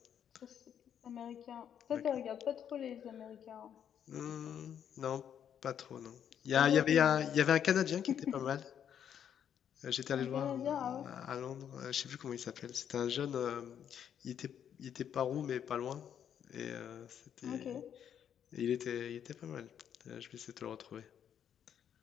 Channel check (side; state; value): right; quieter; 9.0 dB